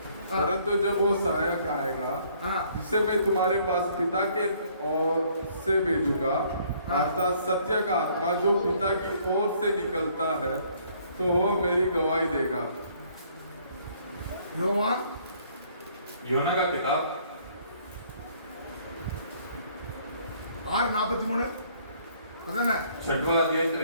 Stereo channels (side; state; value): both; inverted; correlation -0.62